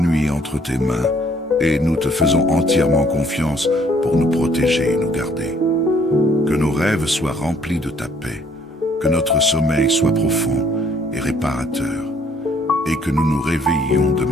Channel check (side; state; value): both; normal; correlation 0.63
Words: entre tes mains, et nous te faisons entièrement confiance pour nous protéger et nous garder. Que nos rêves soient remplis de ta paix, que notre sommeil soit profond et réparateur, et que nous nous réveillions